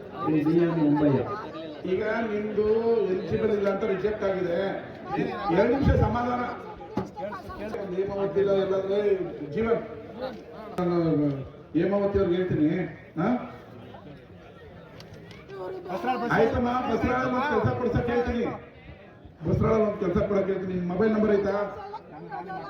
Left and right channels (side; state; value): both; identical; correlation 1.00